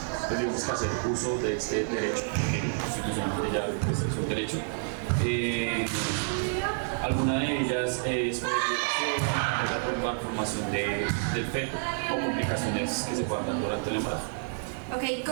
tenemos que hacer uso de este derecho, que constitucionalmente ya pues, es un derecho. Alguna de ellas es por violación, otra por malformación del feto o complicaciones que se puedan dar durante el embarazo. Ok,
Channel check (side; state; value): left; silent; digital silence